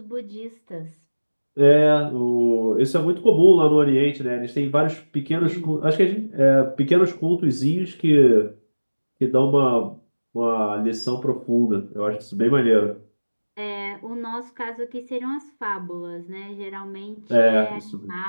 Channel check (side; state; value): both; inverted; correlation -1.00